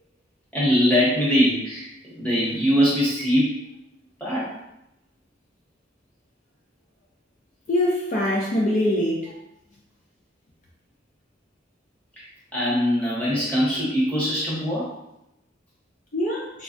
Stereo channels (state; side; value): normal; both; correlation 0.66